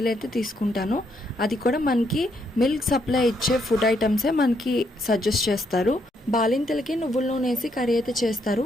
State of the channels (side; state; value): both; normal; correlation 0.75